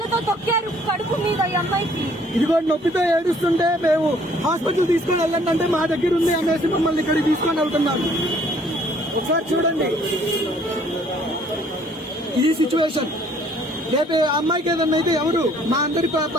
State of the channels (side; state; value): both; normal; correlation 0.60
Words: తొక్కారు కడుపు మీద ఈ అమ్మాయికి. ఇదిగో నొప్పితో ఏడుస్తుంటే మేము హాస్పిటల్ తీసుకొని వెళ్ళండి అంటే మా దగ్గర ఉంది అనేసి మమ్మల్ని ఇక్కడికి తీసుకొని వెళ్తున్నారు. ఒకసారి చూడండి ఈ సిచ్యువేషన్. రేపు అమ్మాయికి ఏదన్నా అయితే ఎవరు మా అందరి